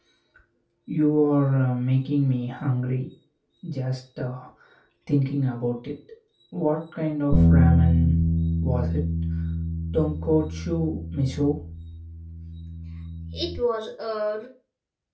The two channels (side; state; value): both; identical; correlation 1.00